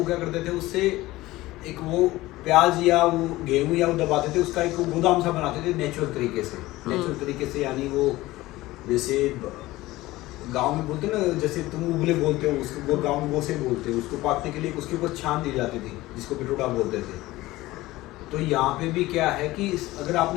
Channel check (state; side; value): quieter; right; 18.1 dB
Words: क्या करते थे, उससे एक वो प्याज या वो गेहूं या वो दबाते थे, उसका एक गोदाम सा बनाते थे नेचुरल तरीके से। नेचुरल तरीके से यानी वो जैसे गांव में बोलते ना, जैसे तुम उबले बोलते हो उसको, गांव में गोसे बोलते हो, उसको पाकने के लिए उसके ऊपर छान दी जाती थी, जिसको पिटोड़ा बोलते थे। तो यहाँ पे भी क्या है कि अगर